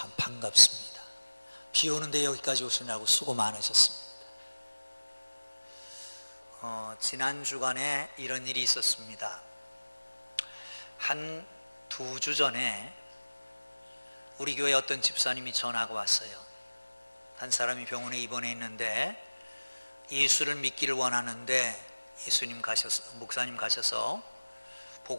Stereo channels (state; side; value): inverted; both; correlation -1.00